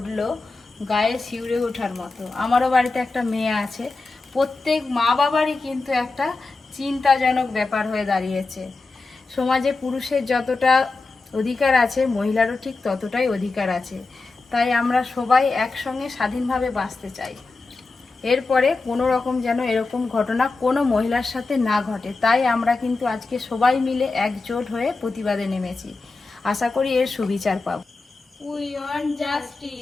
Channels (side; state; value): right; quieter; 3.7 dB